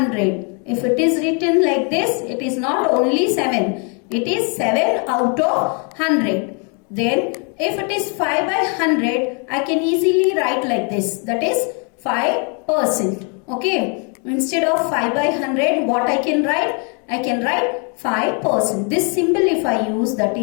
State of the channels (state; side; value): quieter; right; 37.3 dB